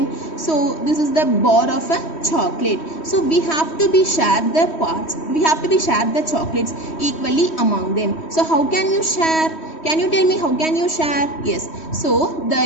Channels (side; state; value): right; late; 3.1 ms